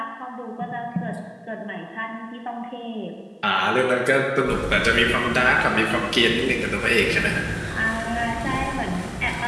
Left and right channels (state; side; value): identical; both; correlation 1.00